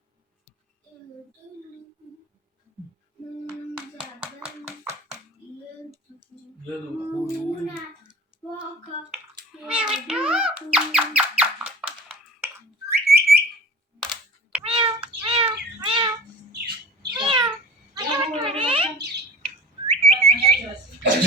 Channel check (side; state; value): both; normal; correlation 0.40